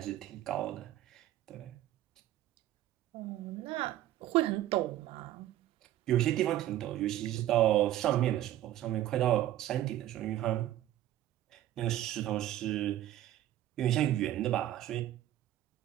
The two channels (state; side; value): quieter; left; 13.4 dB